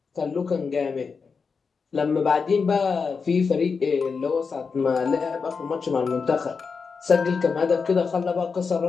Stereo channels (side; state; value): right; quieter; 5.2 dB